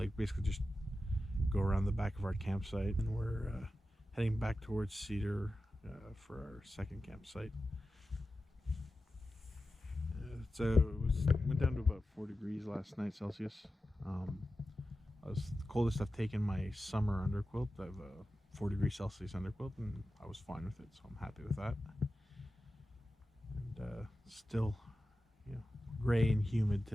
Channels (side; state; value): both; normal; correlation 0.93